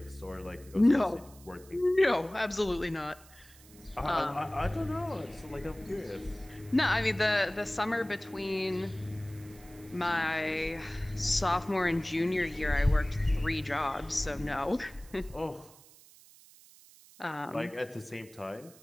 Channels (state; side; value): noise; right; hiss, 23 dB below the sound